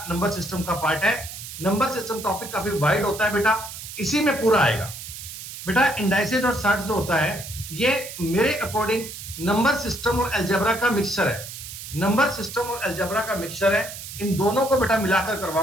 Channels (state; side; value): noise; right; hiss, 11 dB below the sound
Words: नंबर सिस्टम का पार्ट है। नंबर सिस्टम टॉपिक काफी वाइड होता है बेटा, इसी में पूरा आएगा बेटा। इंडाइसेस और सर्ट्स जो होता है, ये मेरे अकॉर्डिंग नंबर सिस्टम और अलजेब्रा का मिक्सचर है। नंबर सिस्टम और अलजेब्रा का मिक्सचर है, इन दोनों को बेटा मिलाकर